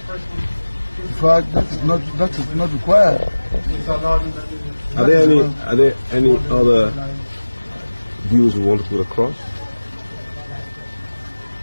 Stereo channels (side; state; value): both; inverted; correlation -1.00